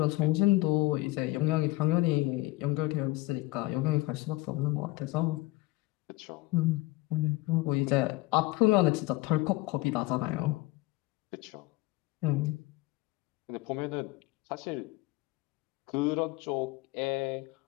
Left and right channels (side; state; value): right; quieter; 19.6 dB